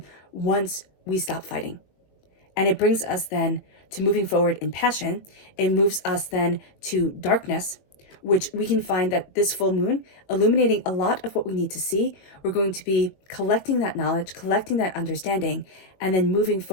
once we stop fighting. And it brings us then to moving forward in passion. It moves us then to darkness, which we can find that this full moon, illuminating a lot of what we need to see. We're going to be collecting that knowledge, collecting that understanding, and then moving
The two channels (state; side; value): late; right; 21 ms